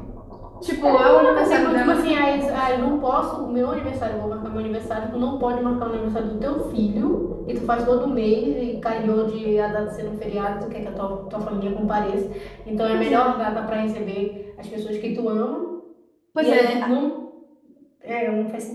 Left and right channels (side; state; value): both; identical; correlation 1.00